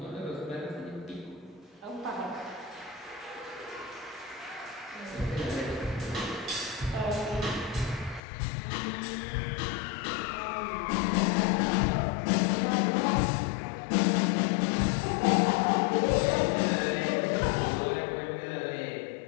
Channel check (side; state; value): right; drops out; at 8.2 s